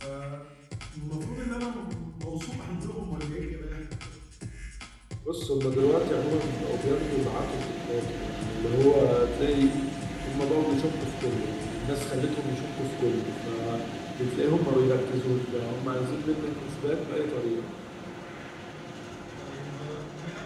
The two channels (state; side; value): identical; both; correlation 1.00